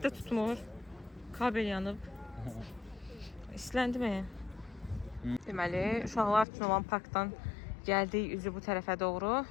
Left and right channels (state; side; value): drops out; right; at 6.5 s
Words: də tutmur. Kabel yanıb. İsləndi mi? Deməli, uşaqlar üçün olan parkdan gəldik üzü bu tərəfə doğru.